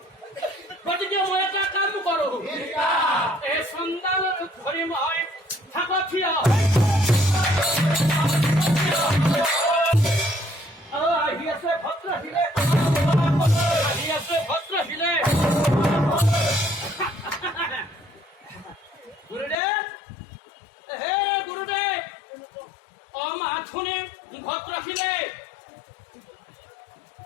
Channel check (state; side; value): drops out; right; at 19.6 s